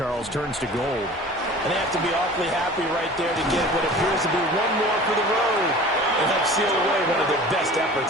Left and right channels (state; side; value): normal; both; correlation 0.42